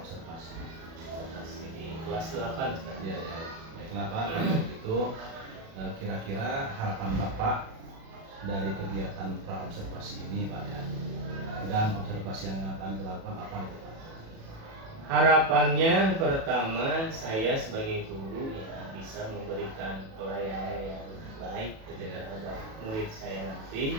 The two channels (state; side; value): late; left; 37 ms